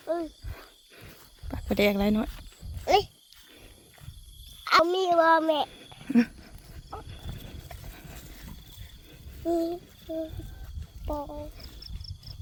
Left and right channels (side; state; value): both; identical; correlation 1.00